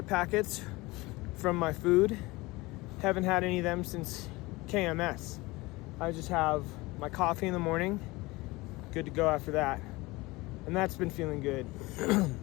packets from my food. Haven't had any of them since KMS. I just have my coffee in the morning. Good to go after that. And that's been feeling good.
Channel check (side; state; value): right; quieter; 21.9 dB